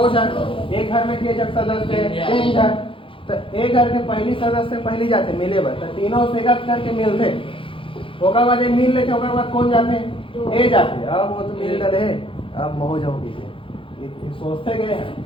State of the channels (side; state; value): right; late; 0.25 ms